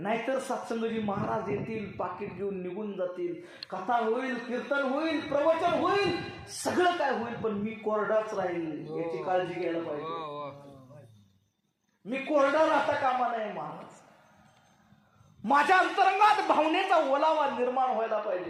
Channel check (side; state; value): both; identical; correlation 1.00